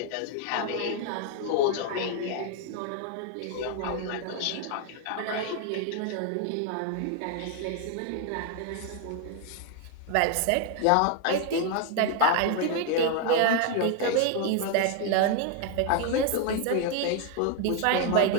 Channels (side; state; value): both; different; correlation 0.00